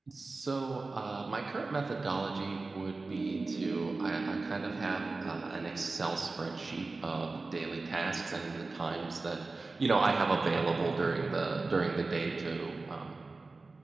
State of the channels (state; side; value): quieter; left; 3.6 dB